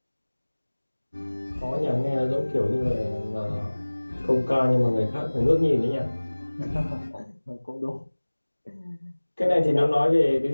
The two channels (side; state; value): both; inverted; correlation -1.00